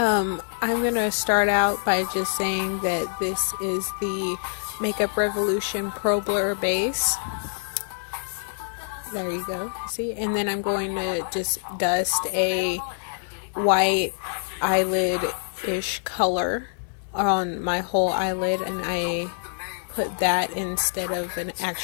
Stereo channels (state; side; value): silent; right; 60 dB below the other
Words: gonna start out by just saying that this is the Makeup Revolution Pro Blur base. There you go. See? And then I'm going to just dust a white eyelid-ish color on my whole eyelid, and I put that instead of an